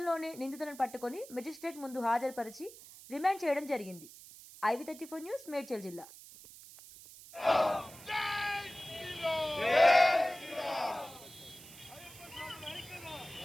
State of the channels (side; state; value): right; noise; hiss, 18 dB below the sound